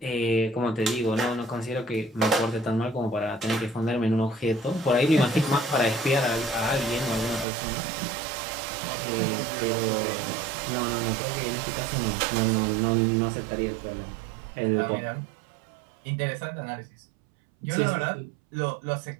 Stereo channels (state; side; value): drops out; left; at 7.5 s